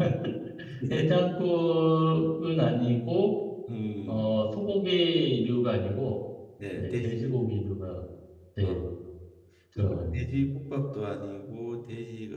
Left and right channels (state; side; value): identical; both; correlation 1.00